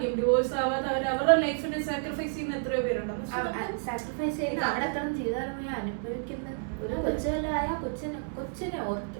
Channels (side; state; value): left; silent; digital silence